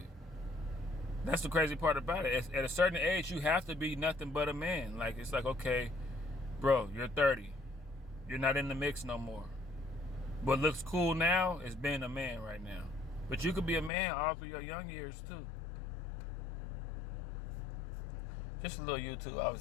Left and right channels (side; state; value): right; drops out; at 13.9 s